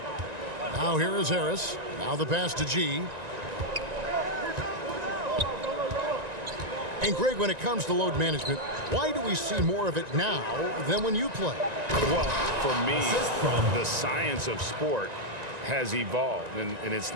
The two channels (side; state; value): left; late; 1.9 ms